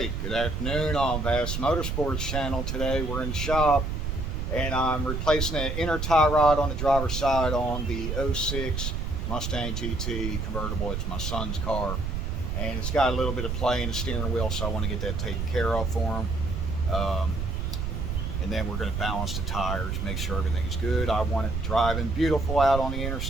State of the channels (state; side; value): noise; right; rumble, 2 dB below the sound